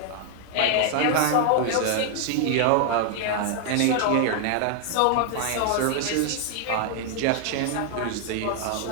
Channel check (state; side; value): different; both; correlation 0.00